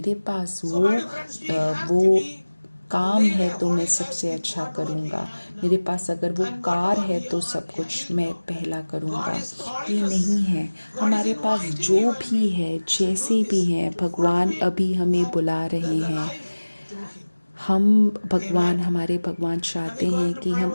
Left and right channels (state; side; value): inverted; both; correlation -1.00